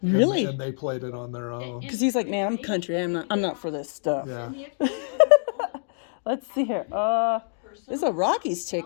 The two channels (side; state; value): right; silent; digital silence